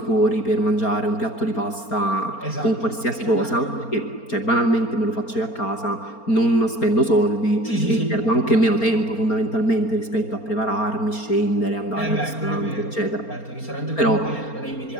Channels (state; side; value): late; right; 4.3 ms